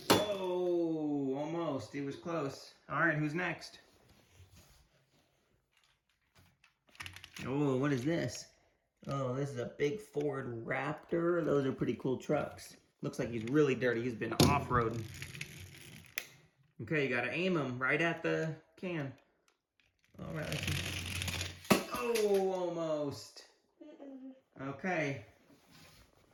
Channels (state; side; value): identical; both; correlation 1.00